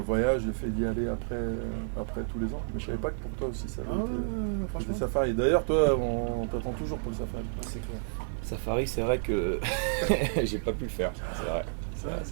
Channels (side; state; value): left; silent; 58 dB below the other